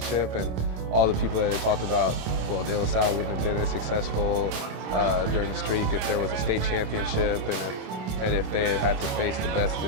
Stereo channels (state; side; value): late; left; 27 ms